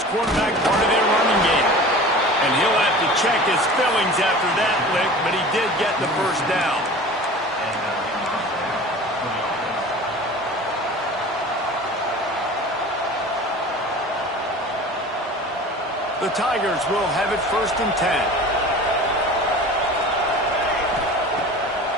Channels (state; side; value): normal; both; correlation 0.39